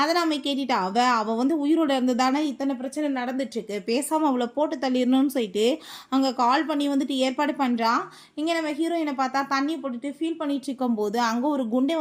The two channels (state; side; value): identical; both; correlation 1.00